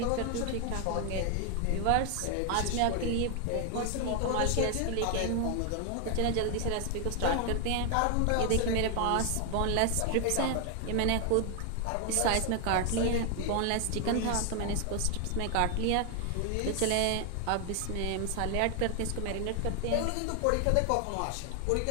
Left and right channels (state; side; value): different; both; correlation 0.00